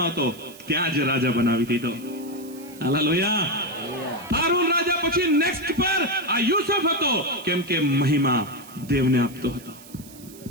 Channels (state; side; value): noise; right; hiss, 20 dB below the sound